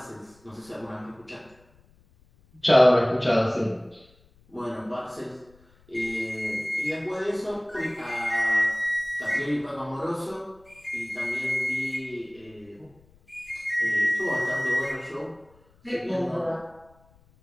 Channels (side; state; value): left; noise; rumble, 30 dB below the sound